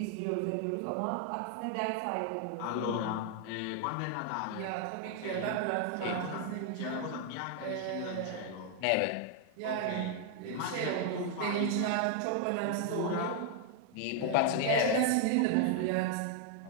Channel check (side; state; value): both; different; correlation 0.00